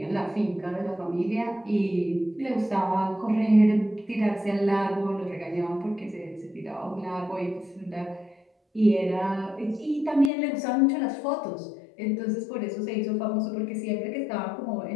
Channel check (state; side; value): drops out; right; at 10.3 s